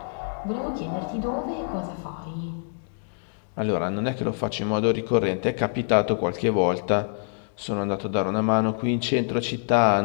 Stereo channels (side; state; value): right; silent; digital silence